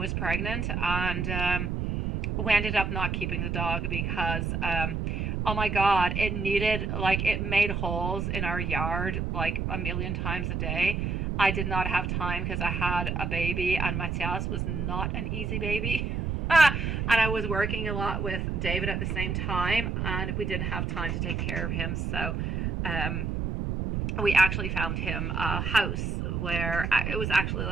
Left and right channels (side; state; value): right; noise; rumble, 1 dB below the sound